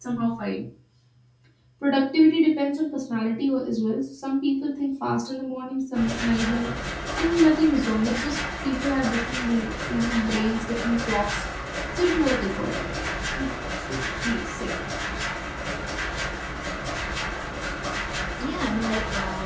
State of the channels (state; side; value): identical; both; correlation 1.00